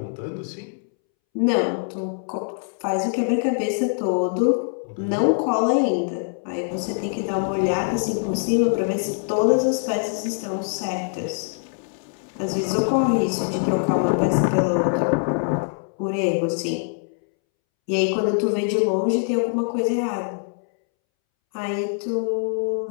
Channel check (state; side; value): silent; right; 63 dB below the other